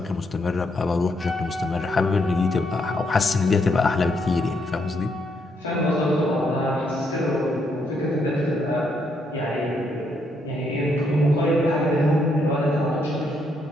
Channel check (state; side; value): normal; both; correlation 0.75